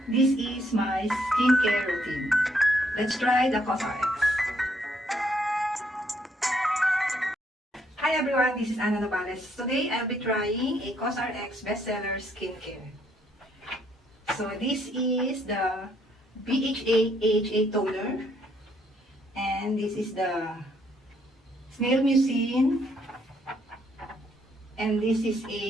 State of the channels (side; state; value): both; normal; correlation 0.71